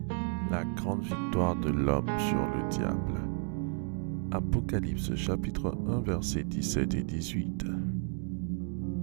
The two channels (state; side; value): quieter; left; 38.6 dB